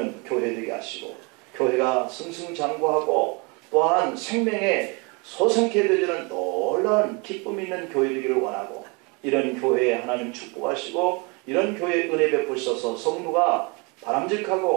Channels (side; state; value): left; quieter; 30.4 dB